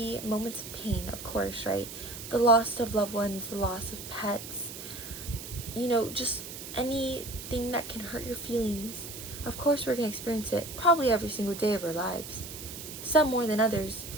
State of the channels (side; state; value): right; noise; hiss, 11 dB below the sound